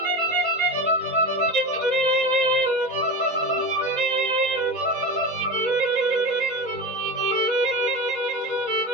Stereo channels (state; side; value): late; left; 4.1 ms